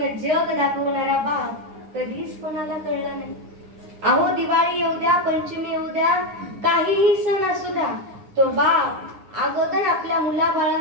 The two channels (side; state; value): left; late; 9.8 ms